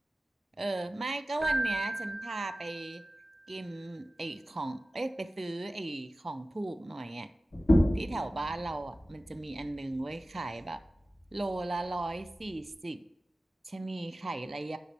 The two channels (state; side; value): normal; both; correlation 0.96